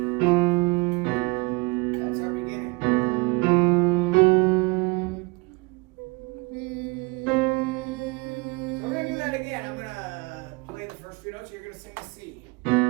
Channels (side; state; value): left; quieter; 26.7 dB